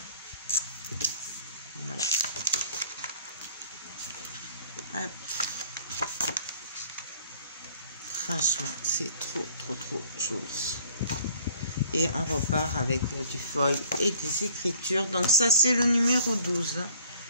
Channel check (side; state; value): both; inverted; correlation -0.55